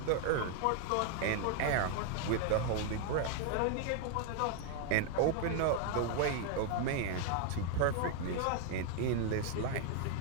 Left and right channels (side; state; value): both; different; correlation 0.00